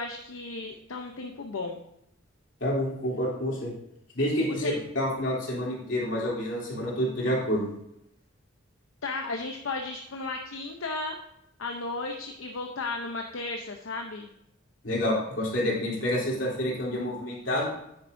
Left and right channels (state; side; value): normal; both; correlation 0.26